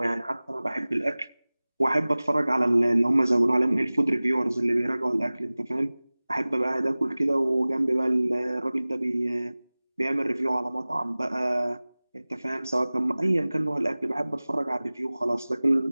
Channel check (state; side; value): inverted; both; correlation -0.99